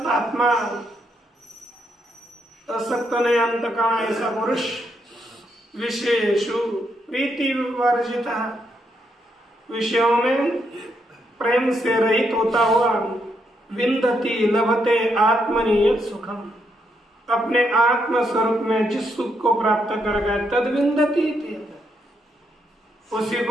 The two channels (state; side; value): normal; both; correlation 0.78